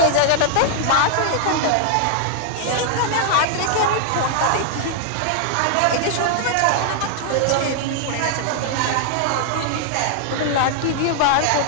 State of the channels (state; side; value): different; both; correlation 0.00